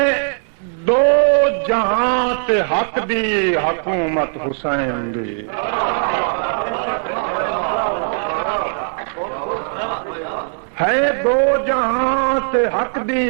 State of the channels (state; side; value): silent; left; 67 dB below the other